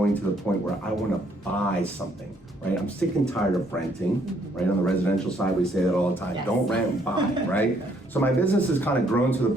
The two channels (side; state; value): both; normal; correlation 0.67